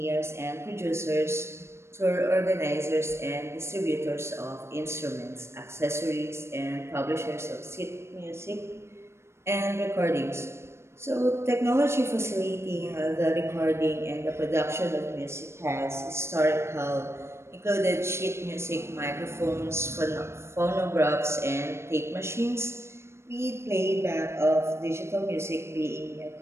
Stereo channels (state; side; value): late; left; 0.13 ms